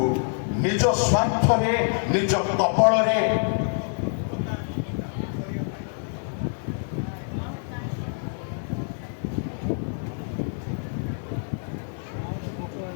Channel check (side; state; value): right; silent; 61 dB below the other